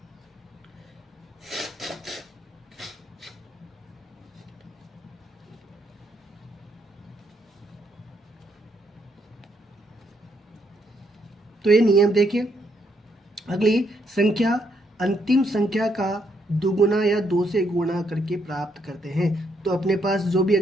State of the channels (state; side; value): normal; both; correlation 0.74